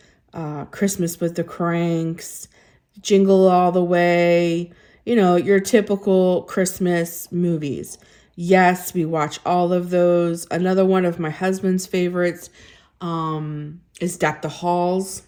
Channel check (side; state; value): both; identical; correlation 1.00